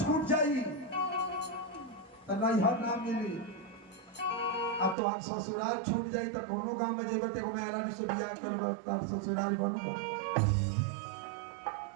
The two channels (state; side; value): drops out; left; at 5.0 s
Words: जाई तो नैहर ना मिली, अब तो हम ससुराल छूट जाई तो कोनो गांव में जेबे ते मेहरानी से बियाह करबो तार ससुराल बनबो।